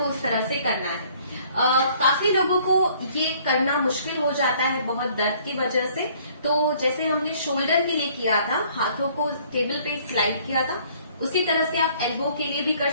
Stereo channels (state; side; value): inverted; both; correlation -0.59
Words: उस तरह से करना है। काफी लोगों को ये करना मुश्किल हो जाता है बहुत दर्द की वजह से। तो जैसे हमने शोल्डर के लिए किया था, हाथों को टेबल पे स्लाइड किया था, उसी तरह से आप एल्बो के लिए भी कर